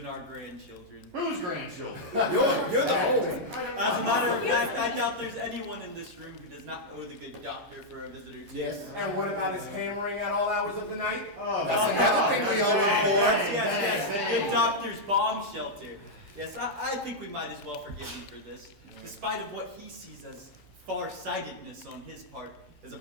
our grandchildren. Whose grandchildren? You're the old one. As a matter of fact, I doubt there's anyone in this room who does not owe the good doctor for a visitor too. Yes. And what about his hammering at all hours of the night? Oh, that's another thing we owe him for. Yes, the good doctor's bomb shelter. Yes, I think we might as well forgive him for this, despite of what he sees as far-sightedness on his part, as a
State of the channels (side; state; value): both; normal; correlation -0.04